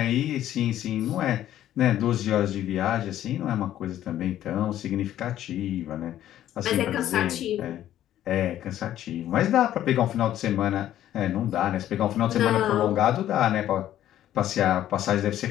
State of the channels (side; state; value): right; quieter; 12.2 dB